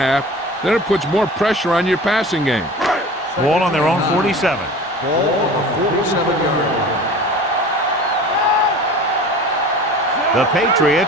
then it puts more pressure on your passing game. Ball on their own 47. Ball on the 47-yard line. The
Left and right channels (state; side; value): normal; both; correlation 0.39